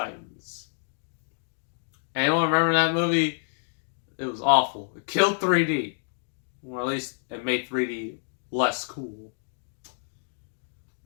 Anyone remember that movie? It was awful. It killed 3D. Or at least it made 3D less cool.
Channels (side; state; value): right; silent; digital silence